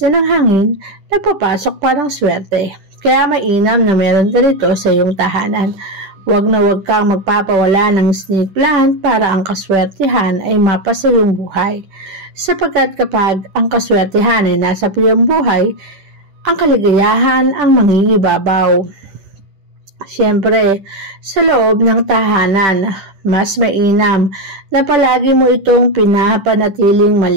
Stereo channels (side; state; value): left; late; 10 ms